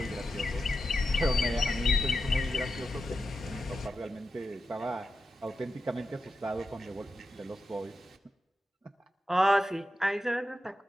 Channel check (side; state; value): both; normal; correlation 0.90